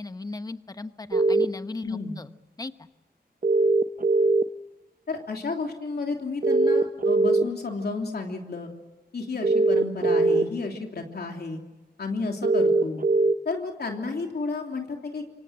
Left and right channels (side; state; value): both; normal; correlation 0.66